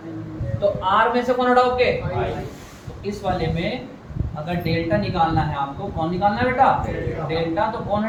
तो आर में से कौन हटाओगे, तो इस वाले में अगर डेल्टा निकालना है आपको, कौन निकालना है बेटा, डेल्टा, तो कौन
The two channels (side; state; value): both; identical; correlation 1.00